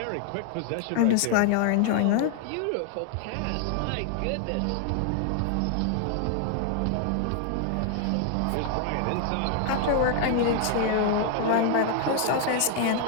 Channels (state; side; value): different; both; correlation 0.00